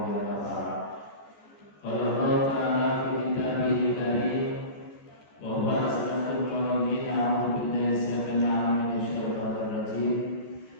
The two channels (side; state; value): right; late; 14 ms